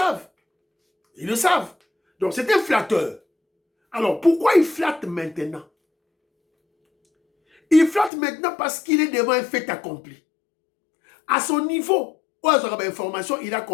Ils le savent. Donc c'est un flatteur. Alors pourquoi il flatte maintenant? Il flatte maintenant parce qu'il est devant un fait accompli. À son niveau, information, il a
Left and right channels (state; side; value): drops out; right; at 8.1 s